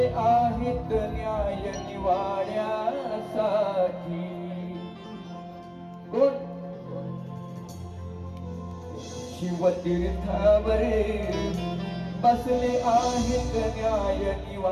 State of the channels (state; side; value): identical; both; correlation 1.00